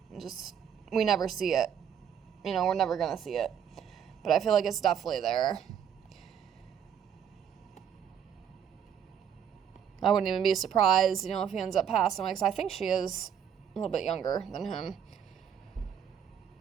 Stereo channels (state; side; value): quieter; left; 8.5 dB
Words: We never see it. You know, we're never going to see it. But I feel like it's definitely there. I wouldn't even be surprised, you know, if he ends up passing away, because I think she is a little bit younger than him.